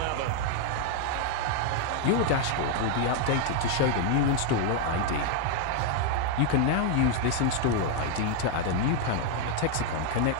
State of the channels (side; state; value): both; different; correlation 0.00